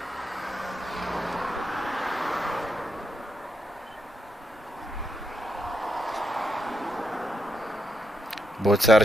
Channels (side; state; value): both; normal; correlation 0.82